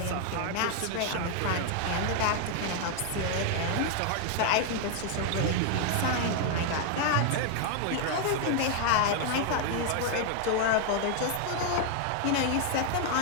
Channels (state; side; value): different; both; correlation 0.00